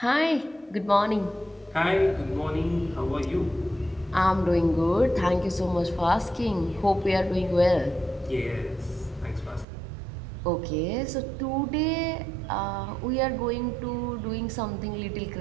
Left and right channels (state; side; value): drops out; left; at 9.7 s